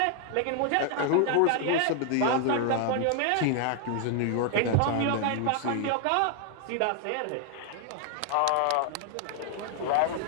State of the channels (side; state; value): both; different; correlation 0.00